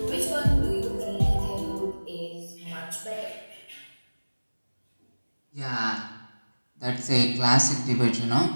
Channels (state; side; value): inverted; both; correlation -1.00